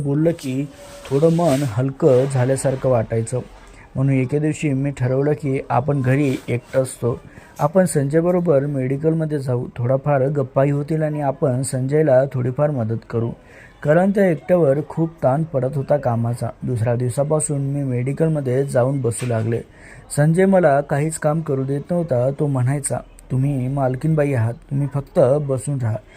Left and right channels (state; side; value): identical; both; correlation 1.00